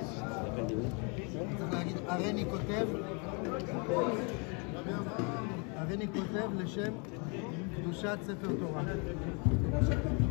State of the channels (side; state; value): right; quieter; 34.2 dB